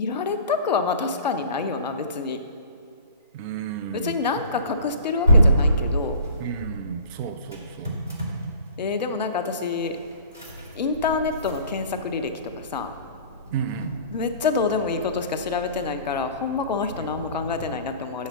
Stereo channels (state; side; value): inverted; both; correlation -0.43